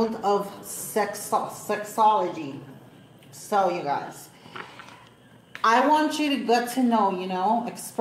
of sexology. So you guys, I want you to get to know,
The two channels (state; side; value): identical; both; correlation 1.00